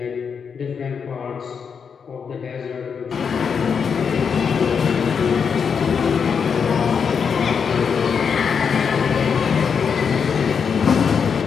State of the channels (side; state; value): right; quieter; 6.4 dB